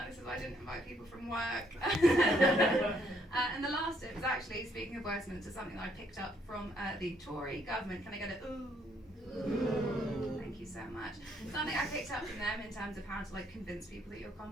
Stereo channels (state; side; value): normal; both; correlation 0.69